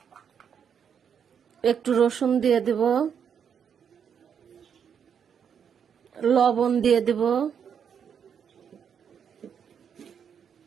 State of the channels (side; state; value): left; quieter; 7.6 dB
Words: একটু রসুন দিয়ে দিব, লবণ দিয়ে দিব,